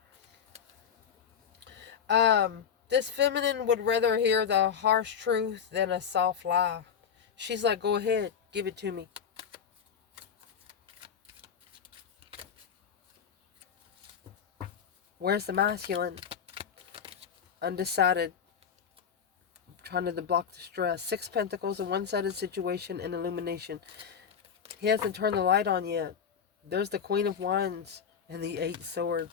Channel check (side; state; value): right; quieter; 7.4 dB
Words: Wow. This feminine would rather hear the harsh truth than a soft lie. She's like, go ahead, give it to me. Where's the masculine? Undecided. Trying to block the stress. 6 pentacles, a one-sided situation, and illumination. He hasn't turned the light on yet. There's the Queen of Wands and the 8